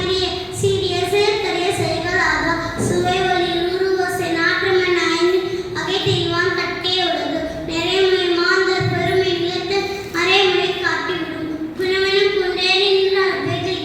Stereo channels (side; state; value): both; identical; correlation 1.00